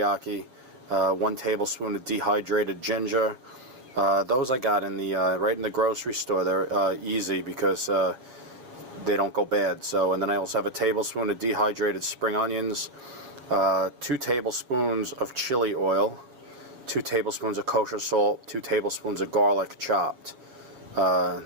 1 tablespoon of dehydrated ginger. Those I got in the right in the grocery store. They're easy because they don't go bad. So, and then I also have a tablespoon of dehydrated spring onions, 2 tablespoons of chili oil, 2 tablespoons of kosher salt, 2 tablespoons of garlic chopped. The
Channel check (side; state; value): left; late; 7.7 ms